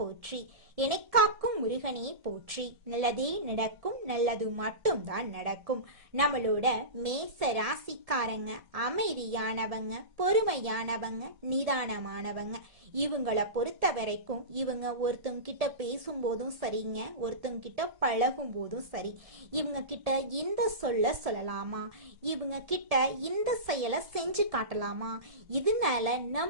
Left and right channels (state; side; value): late; left; 1.7 ms